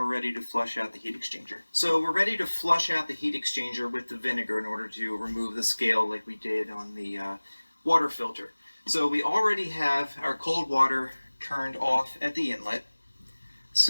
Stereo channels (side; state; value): both; inverted; correlation -1.00